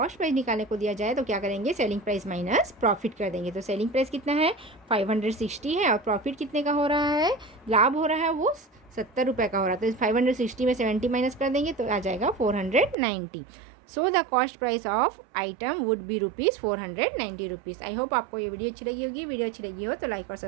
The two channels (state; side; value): drops out; left; at 13.0 s